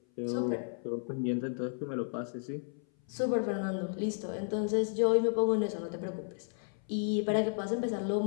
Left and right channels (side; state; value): right; silent; 56 dB below the other